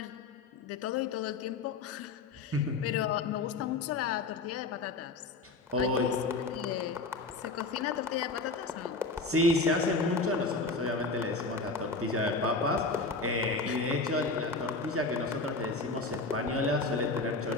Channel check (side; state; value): right; quieter; 3.6 dB